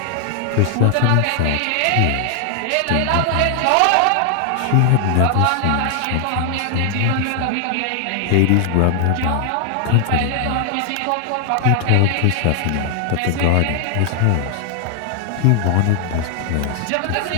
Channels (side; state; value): both; different; correlation 0.00